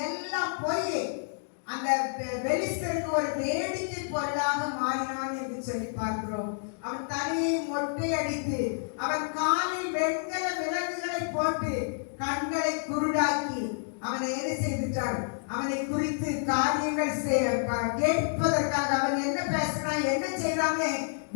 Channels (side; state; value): right; silent; digital silence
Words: எல்லாம் போய் அந்த பெலிஸ்தருக்கு ஒரு வேடிக்கை பொருளாக மாறினான் என்று சொல்லி பார்க்கிறோம். அவன் தலையை மொட்டை அடித்து அவன் காலில் வெண்கல விலங்குகளை போட்டு கண்களை குருடாக்கி அவனை என்ன செய்துட்டார்? அவனை குறித்து காரியங்கள் கேட்பதற்காக அவன் என்ன பேசினான், என்ன செய்யறாங்க